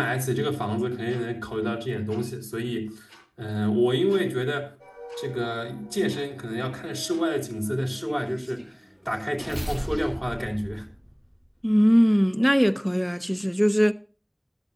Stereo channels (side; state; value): both; identical; correlation 1.00